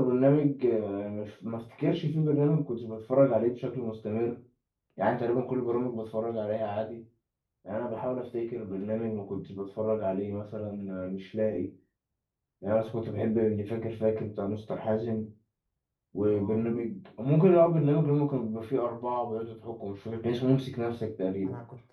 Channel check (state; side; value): identical; both; correlation 1.00